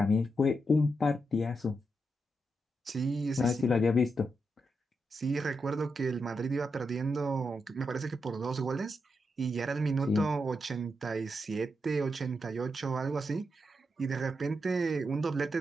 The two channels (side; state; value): both; normal; correlation 0.84